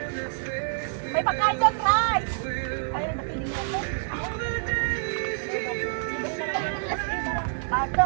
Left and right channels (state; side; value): silent; left; digital silence